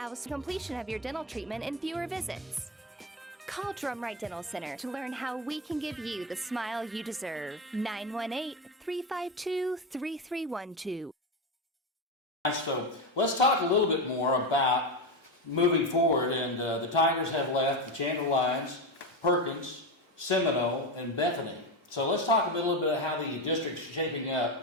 completion of your dental treatment in fewer visits. Call Drumright Dental Center to learn how we can give you the smile you deserve. 918-352-3312. So let's talk a little bit more about moving forward. And the Tigers have left the Chandler Lions, Perkins, Seminole, and Bethany. So let's talk a little bit about how the district's shaping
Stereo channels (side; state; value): both; normal; correlation 0.16